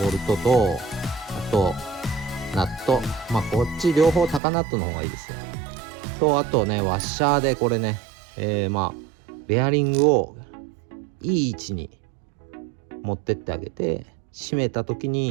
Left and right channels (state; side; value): drops out; left; at 4.4 s